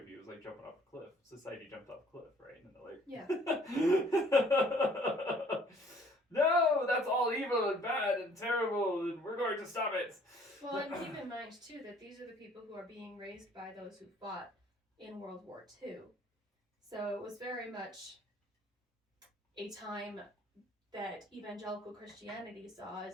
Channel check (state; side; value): normal; both; correlation 0.58